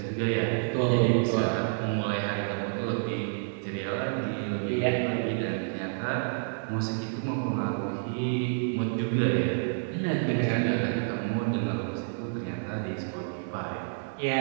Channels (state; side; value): silent; left; digital silence